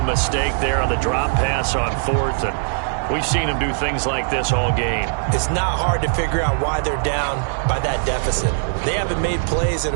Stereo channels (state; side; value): silent; left; digital silence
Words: mistake there on the drop pass on 4th. And we've seen them do things like this all game. It's not hard to figure out why they're down by that deficit. They haven't made plays that